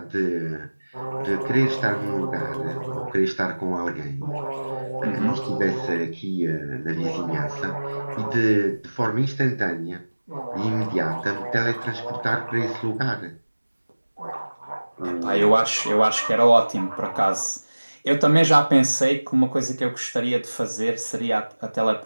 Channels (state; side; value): inverted; both; correlation -1.00